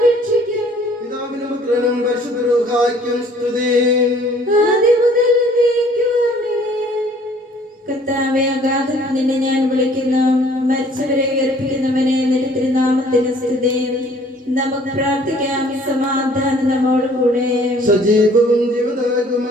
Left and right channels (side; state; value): both; normal; correlation 0.56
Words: രക്ഷിക്കും. പിതാവിനും പുത്രനും പരിശുദ്ധ റൂഹായ്ക്കും സ്തുതി. ആദ്യം മുതൽ എന്നേക്കും ആമേൻ. കർത്താവേ, അഗാധത്തിൽ നിന്നെ ഞാൻ വിളിക്കുന്നു. മരിച്ചവരെ ഉയർപ്പിക്കുന്നവനെ നിന്റെ തിരുനാമത്തിന് സ്തുതി. നമുക്ക് പ്രാർത്ഥിക്കാം. സമാധാനം നമ്മോട് കൂടെ. സജീവവും